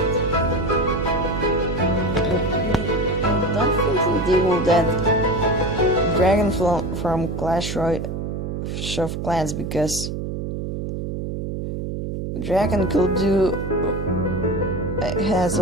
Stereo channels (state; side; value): noise; right; hum, 4 dB below the sound